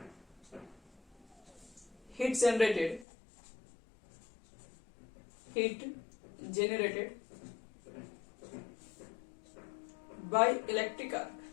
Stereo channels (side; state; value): right; drops out; at 3.1 s